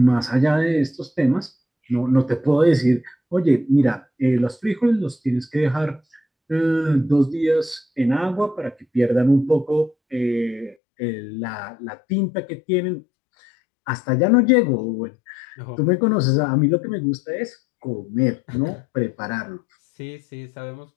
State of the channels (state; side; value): drops out; right; at 10.8 s